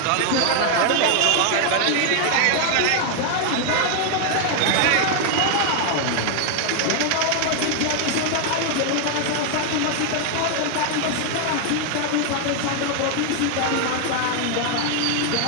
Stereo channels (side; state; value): both; different; correlation 0.00